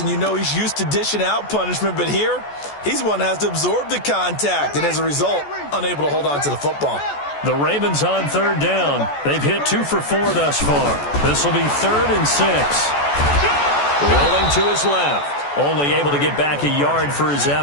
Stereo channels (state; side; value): late; right; 14 ms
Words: you know he's used to dishing out punishment, but here, he's one that has to absorb the contact, and as a result, unable to hold on to the football. The Ravens on 3rd down. They've hit 2 for 4 thus far. This will be 3rd and 6. Rolling to his left. Only able to get back a yard for his